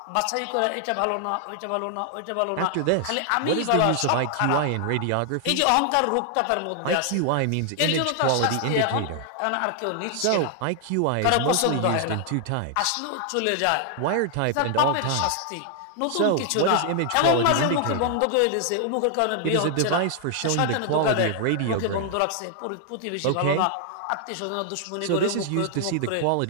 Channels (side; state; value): both; different; correlation 0.00